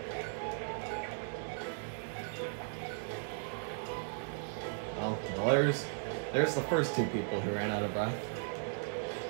Oh, well, there's the first 2 people who ran out of breath.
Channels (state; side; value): silent; left; 53 dB below the other